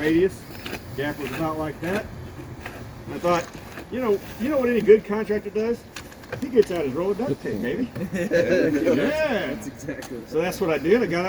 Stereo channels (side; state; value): both; identical; correlation 1.00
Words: Gap was about like that. And I thought, you know what any good contractor does? He gets out his roll of duct tape, baby. Yeah. That's exactly right. So that's what I did. I got